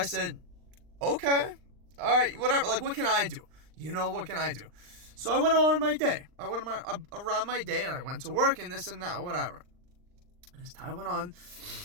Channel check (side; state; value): left; late; 39 ms